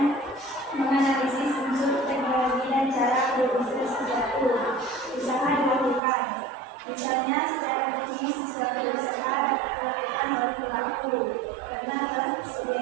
menganalisis unsur teknologi dan cara berusaha suatu usaha dilakukan. Misalnya, secara teknis suatu usaha dapat dilakukan oleh pelaku karena telah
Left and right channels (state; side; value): drops out; left; at 6.0 s